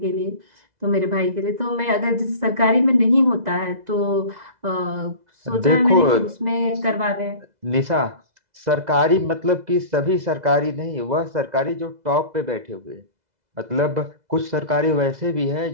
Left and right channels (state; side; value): late; left; 2.0 ms